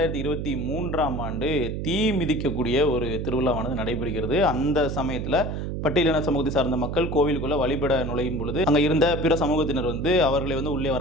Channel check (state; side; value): noise; right; hum, 4 dB below the sound